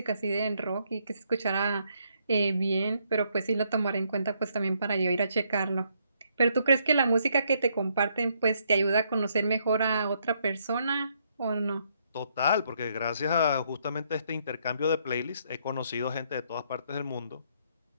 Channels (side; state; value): both; inverted; correlation -0.73